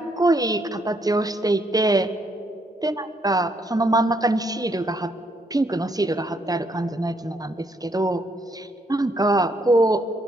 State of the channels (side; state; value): both; normal; correlation 0.72